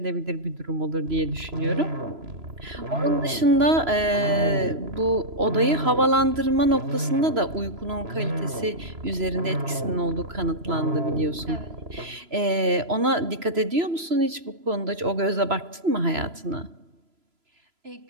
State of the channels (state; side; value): late; left; 3.0 ms